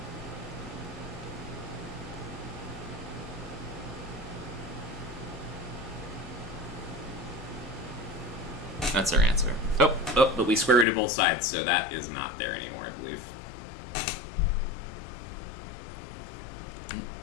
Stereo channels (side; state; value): right; drops out; at 10.9 s